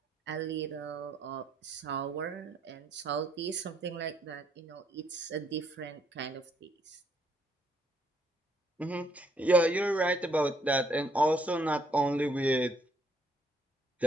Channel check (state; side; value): normal; both; correlation 0.70